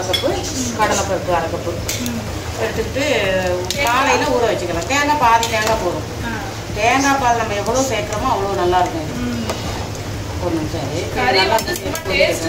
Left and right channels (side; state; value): both; identical; correlation 1.00